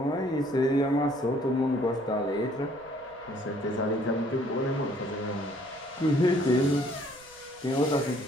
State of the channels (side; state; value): right; noise; rumble, 28 dB below the sound